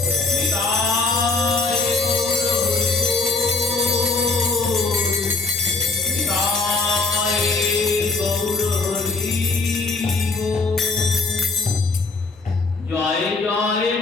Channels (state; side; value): quieter; right; 3.8 dB